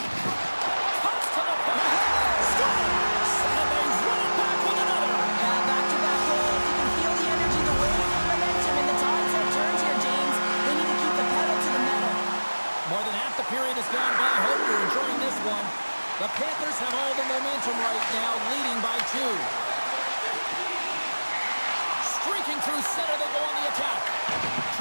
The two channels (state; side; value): inverted; both; correlation -1.00